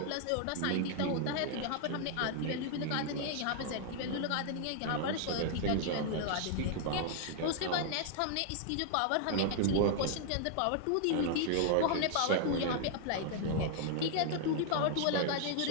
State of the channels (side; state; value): both; different; correlation 0.00